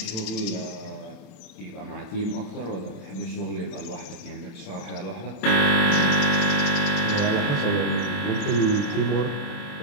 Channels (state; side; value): late; right; 27 ms